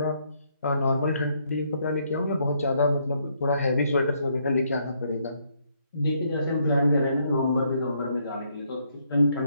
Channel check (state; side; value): inverted; both; correlation -0.73